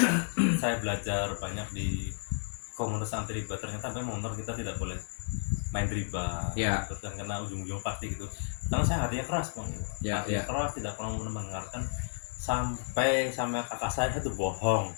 saya belajar banyak di komunitas anti riba, ternyata memang benar kita tidak boleh main riba. Ya. Terus kan karena ujung-ujung pasti gitu. Karena saya hatinya keras, Bang. Ya, Hatinya keras, tidak pernah mendengarkan sampai sama kakak saya itu bohong.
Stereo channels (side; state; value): right; silent; digital silence